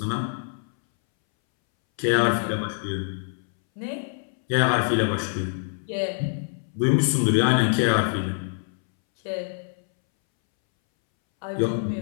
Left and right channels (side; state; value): right; silent; 62 dB below the other